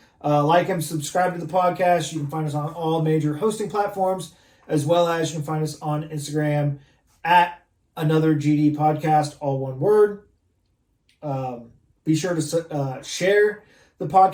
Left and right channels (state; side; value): identical; both; correlation 1.00